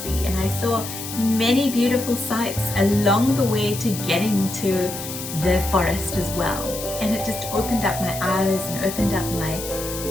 see. And I saw many beautiful sights along the way to getting to the forest as well. And it just opened up my eyes and opened up my,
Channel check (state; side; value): noise; left; hiss, 8 dB below the sound